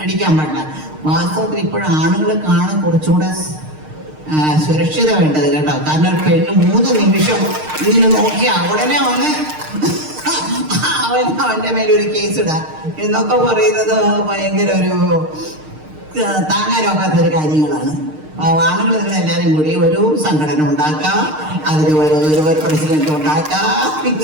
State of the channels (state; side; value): late; left; 6.5 ms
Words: അടിക്കാൻ പാടില്ല. വാസ്തവത്തിൽ ഇപ്പോഴും ആണുങ്ങൾ കാണാൻ കുറച്ചുകൂടെ സുരക്ഷിത വേണ്ടത് കേട്ടോ. കാരണം ഒരു പെണ്ണ് 3 നിമിഷം ഇങ്ങനെ നോക്കിയാൽ ഉടനെ വന്ന് അവന്റെ മേലൊരു കേസ് ഇടാം എന്നൊക്കെ പറയുന്നത് ഭയങ്കര ഒരു താങ്ങാനൊക്കാത്തൊരു കാര്യങ്ങളാണ്. ആണുങ്ങൾ നിങ്ങളെല്ലാവരും കൂടി ഒരു സംഘടന ഉണ്ടാക്കാം, അതിൽ ഒരു പ്രസിഡന്റ് ഉണ്ടാക്കാം,